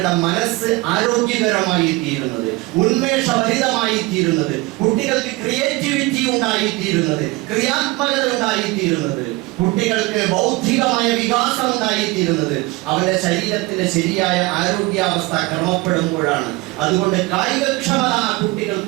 മനസ്സ് ആരോഗ്യകരമായി തീരുന്നത്, ഉന്മേഷഭരിതമായി തീരുന്നത്, കുട്ടികൾക്ക് ക്രിയേറ്റിവിറ്റി ഉണ്ടായി തീരുന്നത്, ക്രിയാത്മകത ഉണ്ടായി തീരുന്നത്, കുട്ടികൾക്ക് ബൗദ്ധികമായ വികാസം ഉണ്ടായിത്തീരുന്നത് അവന്റെ ശരീരത്തിന്റെ ശരിയായ ആരോഗ്യാവസ്ഥ ക്രമപ്പെടുമ്പോഴാണ്. അതുകൊണ്ട് കായികക്ഷമത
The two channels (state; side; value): quieter; left; 22.1 dB